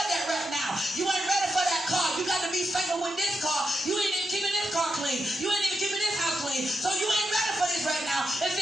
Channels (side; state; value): both; normal; correlation 0.85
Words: that right now. You ain't ready for that car. You got to be faithful with this car. You ain't even keeping this car clean. You ain't even keeping this house clean. So you ain't ready for this right now. And